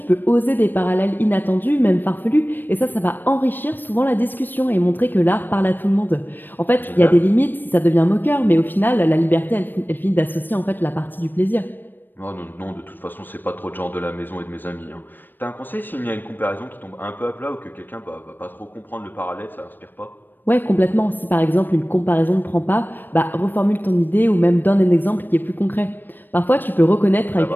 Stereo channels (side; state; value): right; late; 0.093 ms